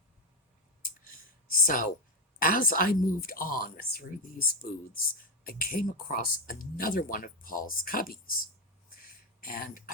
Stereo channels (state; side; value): normal; both; correlation 0.09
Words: So as I moved on through these booths, I came across another one of Paul's cubbies. And